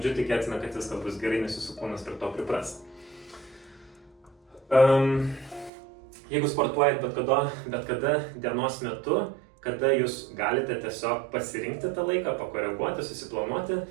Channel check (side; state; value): left; drops out; at 5.7 s